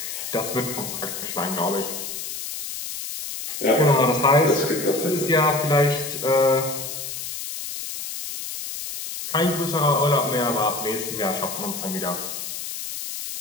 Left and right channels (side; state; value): left; noise; hiss, 7 dB below the sound